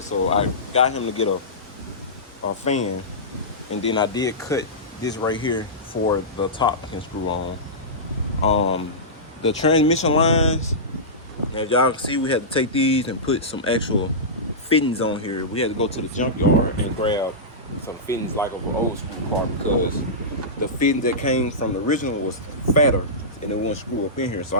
So I got him to get a fan. And then I did cut this right here for the top can screw on. The transmission lines, as y'all can see, we had to take these and put some actual fittings on here. We had to go to the junkyard and grab some fittings like of an old school car because the fittings that came from the original was fatter and it wouldn't screw up in here. So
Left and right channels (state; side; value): normal; both; correlation -0.16